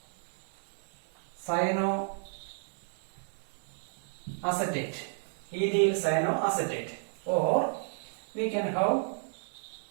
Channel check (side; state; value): left; silent; 56 dB below the other